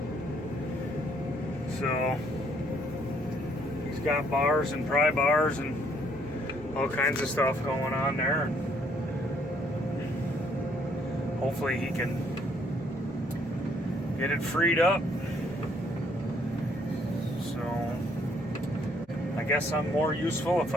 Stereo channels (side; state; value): left; noise; hum, 29 dB below the sound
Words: So he's got bars and pry bars and all kinds of stuff going on there. Hopefully he can get it freed up. So I guess I'm more useful if